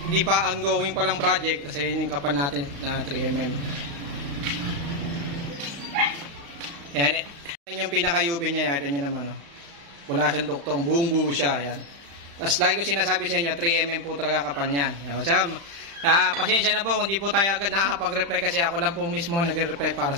di pa ongoing palang project. Kasi yun yung kapal natin na 3mm. Yan, yan yung pinaka-UV niya, ito nyo naman, oh. Wala siyang duktong, buong buo siya, yan. Tapos lagi ko sinasabi sa inyo, 3mm po talaga kapal niyan. So, pasensya na po kung di po tayo agad nakakapag-reply kasi ako lang po mismo nag-reply para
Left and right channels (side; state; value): left; late; 35 ms